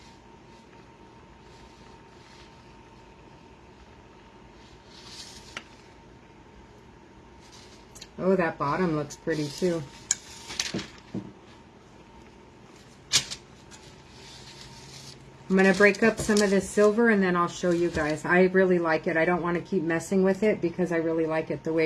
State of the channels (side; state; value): both; identical; correlation 1.00